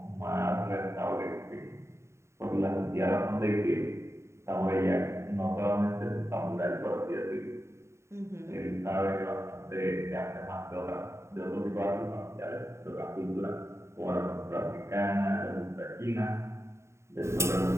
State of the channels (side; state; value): left; late; 0.13 ms